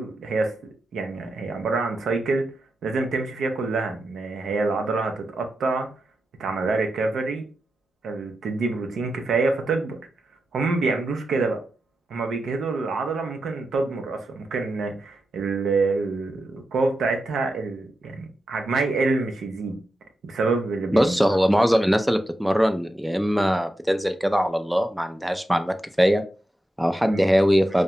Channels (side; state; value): both; normal; correlation 0.89